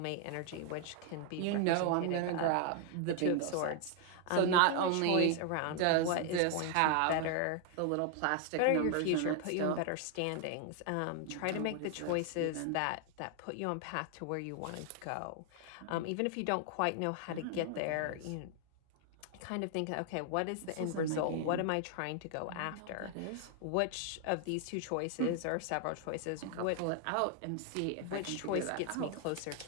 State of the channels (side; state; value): both; different; correlation 0.00